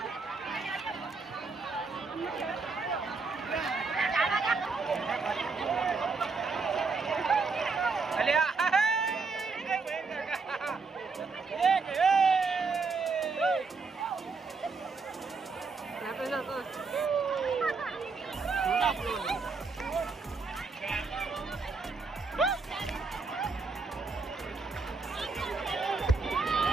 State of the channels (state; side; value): quieter; left; 4.4 dB